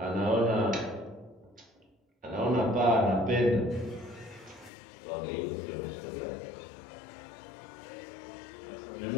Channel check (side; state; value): right; drops out; at 4.7 s